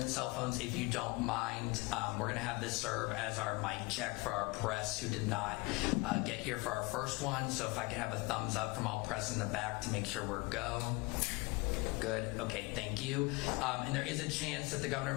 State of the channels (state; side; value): quieter; right; 25.6 dB